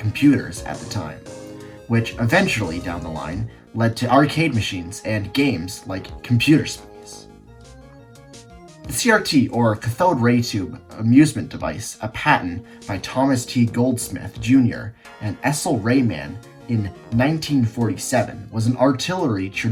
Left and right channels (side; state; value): both; identical; correlation 1.00